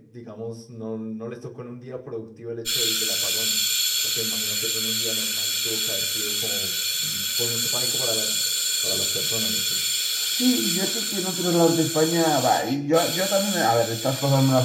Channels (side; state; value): both; identical; correlation 1.00